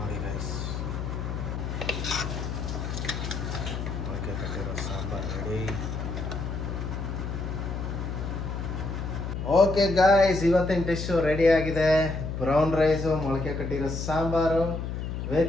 ಗಾಯ್ಸ್. ಮೊಳಕೆ ಕಟ್ಟಿರೋ ಸಾಂಬಾರು ರೆಡಿ. ಓಕೆ ಗಾಯ್ಸ್, ಇವತ್ತಿನ ಡಿಶ್ಶು ರೆಡಿ ಆಗಿದೆ. ಬ್ರೌನ್ ರೈಸು, ಮೊಳಕೆ ಕಟ್ಟಿರೋ ಸಾಂಬಾರು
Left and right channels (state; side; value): noise; left; hum, 4 dB below the sound